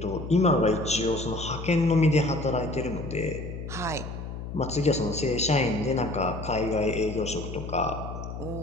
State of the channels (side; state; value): left; noise; hum, 8 dB below the sound